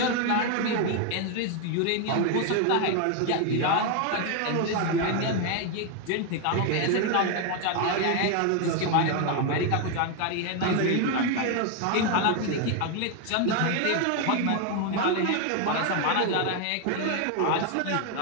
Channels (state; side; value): different; both; correlation 0.01